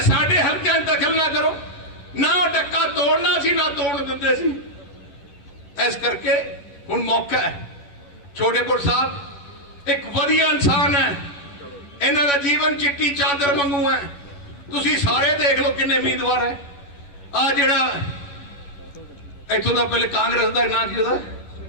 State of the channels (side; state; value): right; late; 11 ms